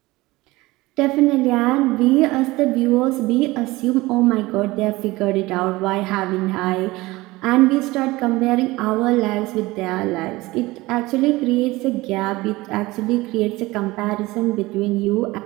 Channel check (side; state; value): left; quieter; 20.3 dB